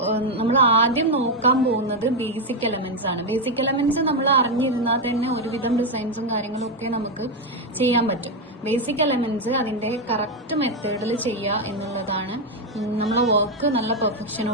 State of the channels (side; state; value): both; normal; correlation 0.05